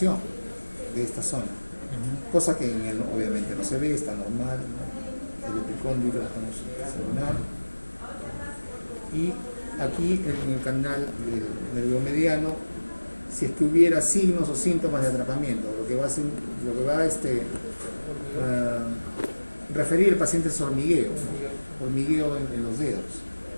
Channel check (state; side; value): inverted; both; correlation -1.00